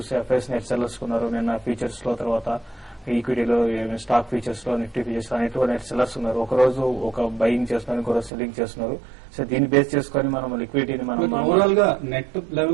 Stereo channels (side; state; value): left; drops out; at 8.3 s